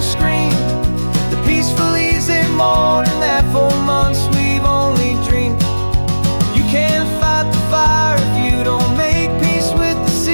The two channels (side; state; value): both; inverted; correlation -1.00